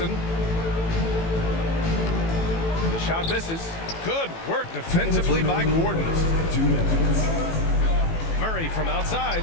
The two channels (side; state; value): right; late; 18 ms